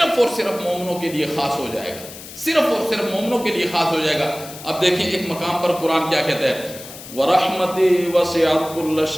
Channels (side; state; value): left; noise; hiss, 15 dB below the sound